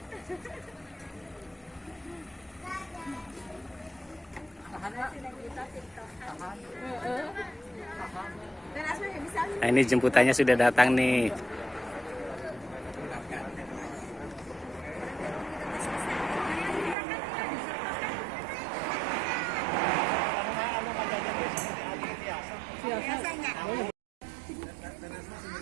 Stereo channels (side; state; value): left; drops out; at 16.9 s